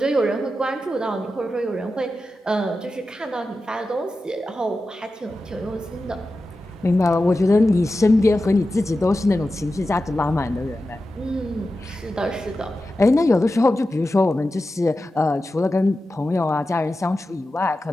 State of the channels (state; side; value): normal; both; correlation 0.92